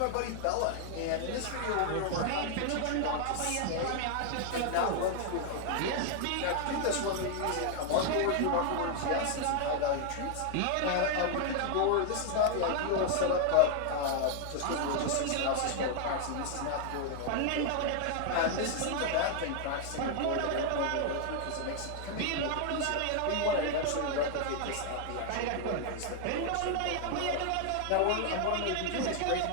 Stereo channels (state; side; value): different; both; correlation 0.00